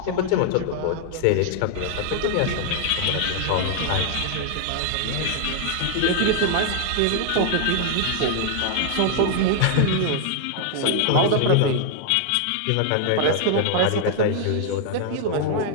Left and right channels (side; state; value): both; different; correlation 0.00